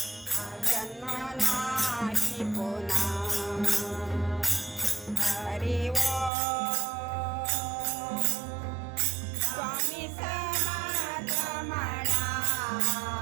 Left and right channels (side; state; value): left; drops out; at 6.3 s